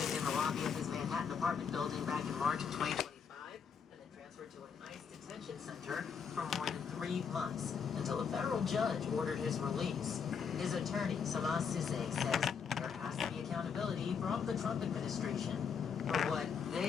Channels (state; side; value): quieter; right; 6.5 dB